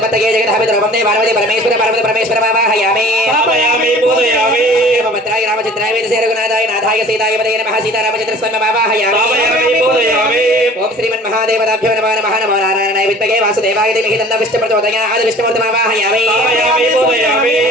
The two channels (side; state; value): both; normal; correlation 0.46